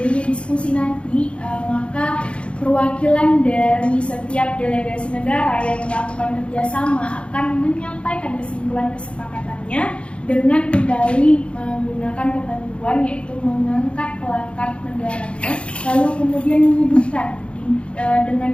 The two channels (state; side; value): late; right; 0.059 ms